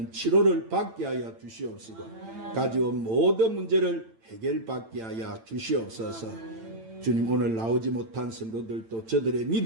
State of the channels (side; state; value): left; late; 8.9 ms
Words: 치료를 받게 하여 주시옵시고 가져온 모든 문제를 해결받게 하여 주시옵소서. 주님, 오늘 나오지 못한 성도들도 저들의